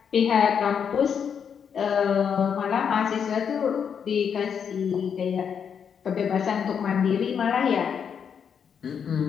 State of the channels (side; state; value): right; quieter; 7.3 dB